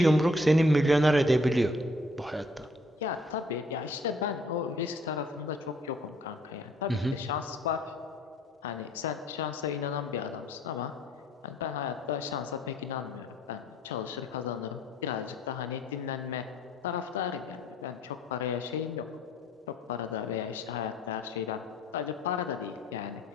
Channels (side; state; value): both; normal; correlation 0.60